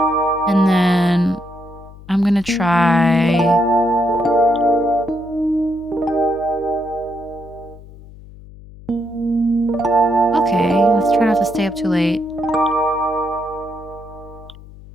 and then I'm gonna try. Okay, let's try not to stay up too late.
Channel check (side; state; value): left; noise; hum, 19 dB below the sound